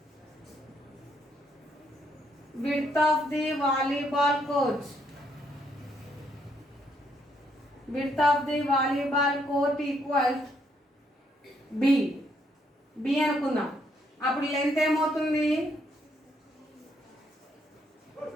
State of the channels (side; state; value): both; normal; correlation 0.73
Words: width of the volleyball court. Width of the volleyball court equals b. b అనుకుందాం. అప్పుడు లెంత్ ఏమవుతుంది?